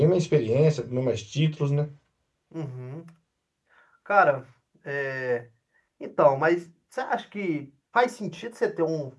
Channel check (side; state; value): both; identical; correlation 1.00